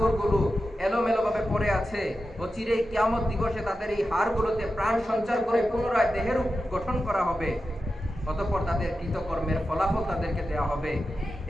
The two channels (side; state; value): both; normal; correlation 0.91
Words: এলোমেলোভাবে পড়ে আছে। অচিরেই কিয়ামত দিবসে তাদের এই হাড়গুলোতে প্রাণ সঞ্চার করে পুনরায় দেহের গঠন করা হবে। অতঃপর তাদের কৃতকর্মের ফলাফল তাদেরকে দেওয়া হবে।